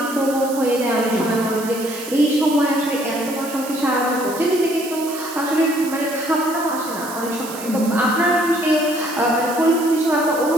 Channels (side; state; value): right; noise; hiss, 12 dB below the sound